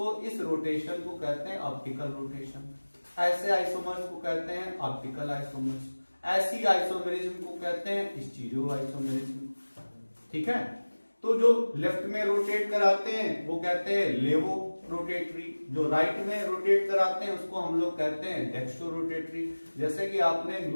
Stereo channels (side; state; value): both; inverted; correlation -1.00